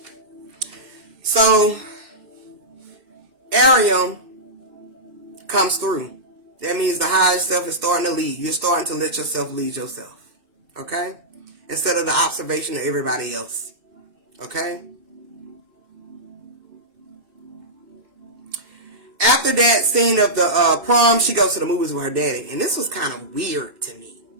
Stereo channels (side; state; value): left; late; 2.7 ms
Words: So, Arium comes through. That means the higher self is starting to lead. You're starting to let yourself lead yourself. Okay? Instead of the observation of everybody else. Okay? After that scene of the prom, she goes to the movies with her daddy. And this was kind of weird to me.